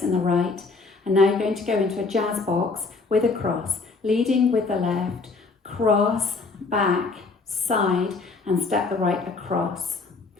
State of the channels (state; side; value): quieter; right; 4.1 dB